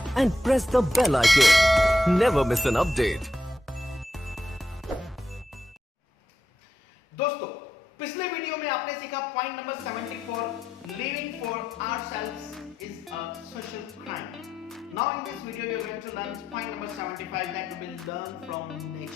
and press the bell icon. Never miss an update. दोस्तों, पिछले video में आपने सीखा point number 74, living for ourselves is a social crime. Now in this video we are going to learn point number 75, that we will learn from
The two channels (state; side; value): normal; both; correlation 0.84